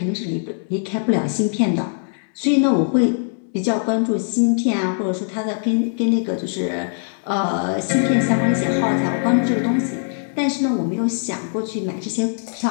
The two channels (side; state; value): right; silent; 65 dB below the other